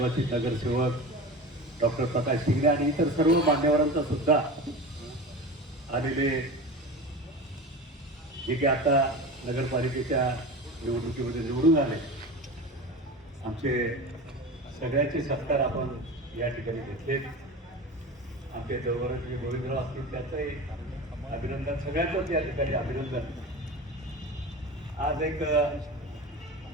नगरसेवक डॉक्टर प्रकाश शिंगणे आणि इतर सर्व मान्यवरांचा सुद्धा आलेले, जे की आता नगरपालिकेच्या निवडणुकीमध्ये निवडून आले, आमचे सगळ्यांचे सत्कार आपण या ठिकाणी घेतले. आमचे जवळचे गोविंदराव असतील त्याचंही अभिनंदन, सगळ्यांचंच या ठिकाणी अभिनंदन. आज एक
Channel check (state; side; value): normal; both; correlation 0.30